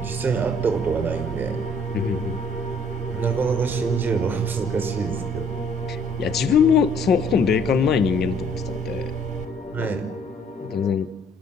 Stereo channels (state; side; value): normal; both; correlation 0.60